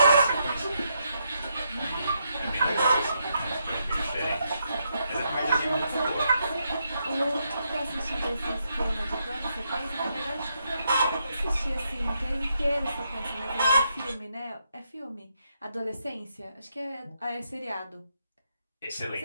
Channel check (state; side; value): inverted; both; correlation -0.80